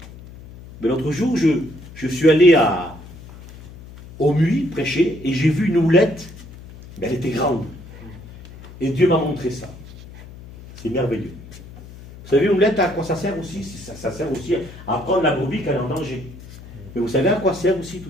Mais l'autre jour, je suis allé au Muy prêcher et j'ai vu une houlette, mais elle était grande. Et Dieu m'a montré ça. C'est merveilleux. Vous savez, une houlette, à quoi ça sert aussi? Ça sert aussi à prendre la brebis quand elle est en danger. Mais vous savez à quoi sert aussi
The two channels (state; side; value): noise; left; hum, 17 dB below the sound